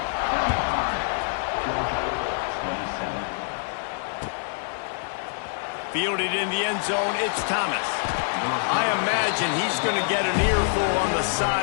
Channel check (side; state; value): right; silent; digital silence